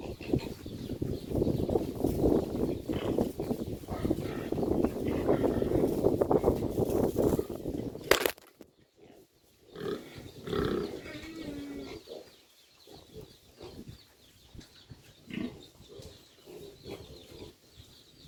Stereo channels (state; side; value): identical; both; correlation 1.00